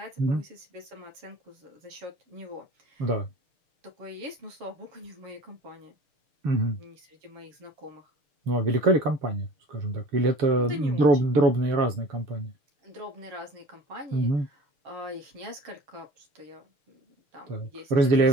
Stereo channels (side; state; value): left; late; 6.6 ms